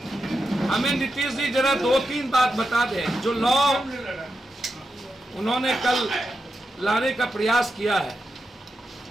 हमें नीतीश जी जरा 2-3 बात बता दें। जो लॉ उन्होंने कल लाने का प्रयास किया है,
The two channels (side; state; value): both; normal; correlation 0.87